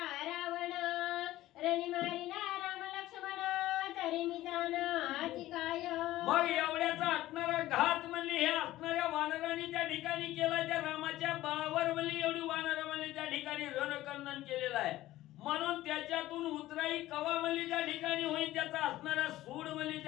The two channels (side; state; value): right; quieter; 15.6 dB